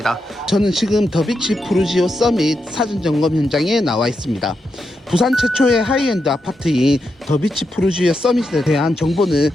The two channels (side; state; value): both; normal; correlation 0.85